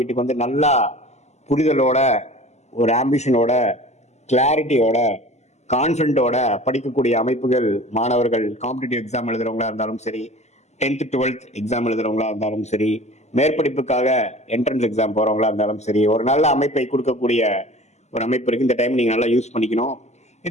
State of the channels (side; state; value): right; late; 0.33 ms